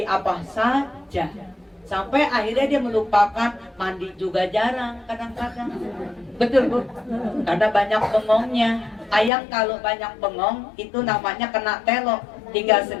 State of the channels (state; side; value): drops out; right; at 9.3 s